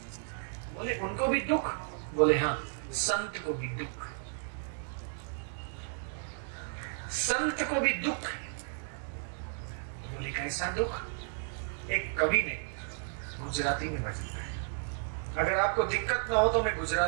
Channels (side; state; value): left; silent; 56 dB below the other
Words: बोले उनको भी दुख? बोले हाँ, संत को भी दुख, संत को भी दुख। बोले कैसा दुख? एक कवि ने गुजराती में भजन गाया। अगर आपको दिक्कत ना हो तो मैं